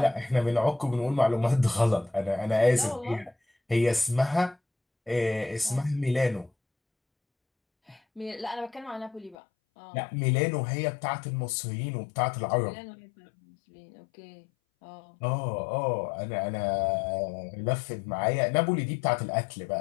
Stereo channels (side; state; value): right; drops out; at 9.3 s